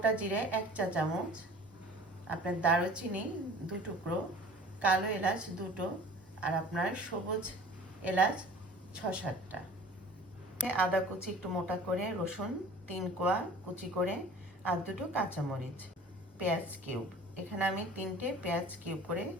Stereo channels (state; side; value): normal; both; correlation 0.44